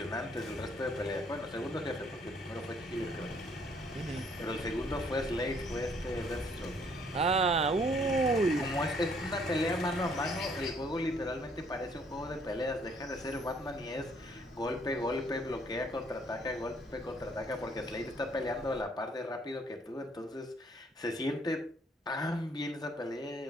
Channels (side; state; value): both; normal; correlation 0.64